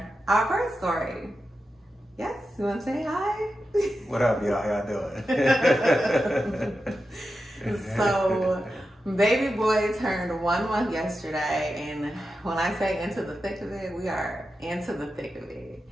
our birth story. Yes, you want to say hi? What up, y'all? How y'all doing? So, baby boy turned 1 month yesterday, and when I say into the thick of it, we are into the thick of it.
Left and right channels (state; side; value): normal; both; correlation 0.90